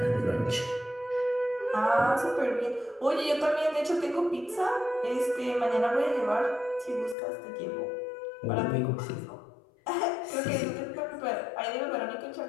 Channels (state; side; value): drops out; right; at 7.2 s